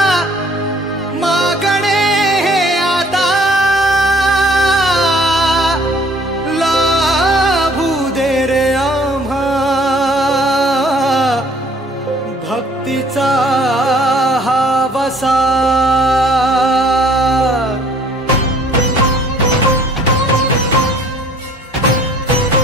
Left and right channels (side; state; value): both; normal; correlation 0.57